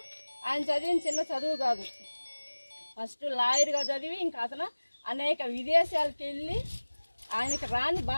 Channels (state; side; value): inverted; both; correlation -1.00